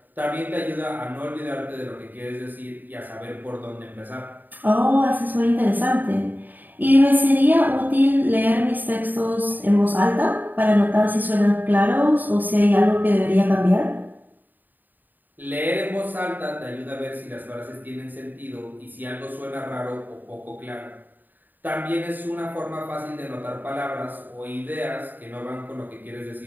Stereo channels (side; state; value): left; late; 0.088 ms